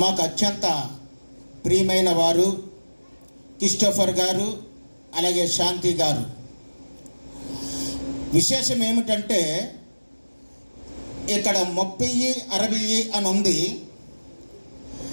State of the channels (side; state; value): both; inverted; correlation -1.00